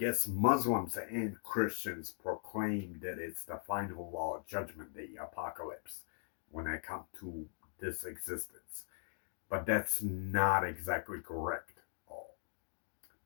Muslims and Christians proclaim that it's the final judgment day, apocalypse, when I come to this existence. But that's not exactly correct.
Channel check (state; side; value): silent; right; digital silence